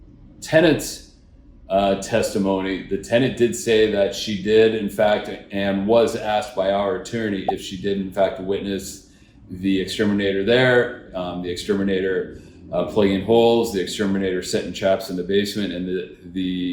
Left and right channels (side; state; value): both; identical; correlation 1.00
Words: tenant's testimony, the tenant did say that she did, in fact, and was asked by our attorney if she did, in fact, witness the exterminator there, the exterminator plugging holes, the exterminator setting traps in the basement, and